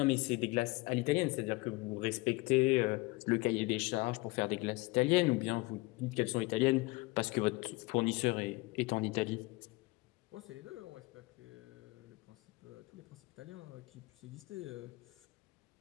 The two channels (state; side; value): quieter; right; 23.6 dB